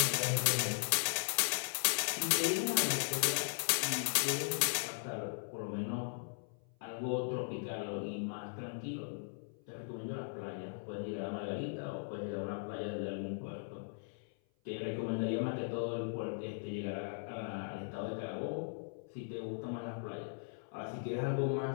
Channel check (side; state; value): right; silent; 52 dB below the other